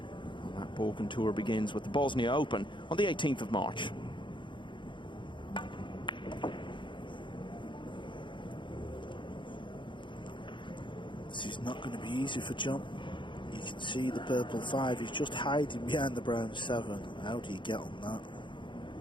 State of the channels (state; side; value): late; right; 0.23 ms